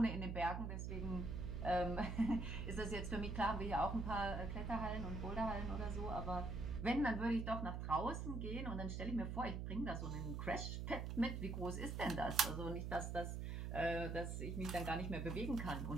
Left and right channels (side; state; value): right; noise; hum, 3 dB below the sound